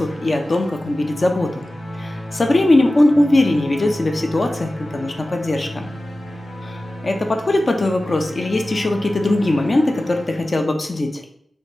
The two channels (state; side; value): normal; both; correlation 0.96